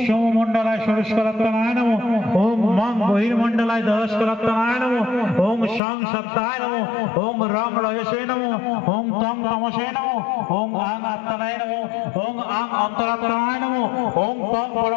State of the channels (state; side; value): drops out; right; at 5.8 s